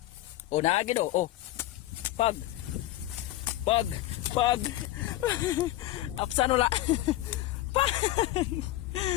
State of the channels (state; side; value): quieter; right; 15.4 dB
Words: Oh, naagid, oh. Oh. Pag. Pag. Pag. Apsan wala. Pag.